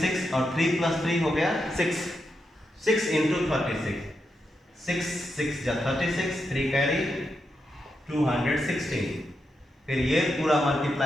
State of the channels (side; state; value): both; normal; correlation 0.85